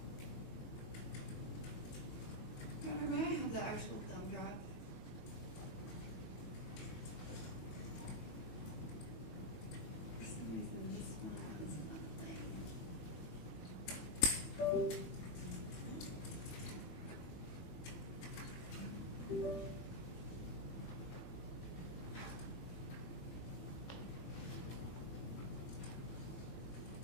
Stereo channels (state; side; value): late; right; 21 ms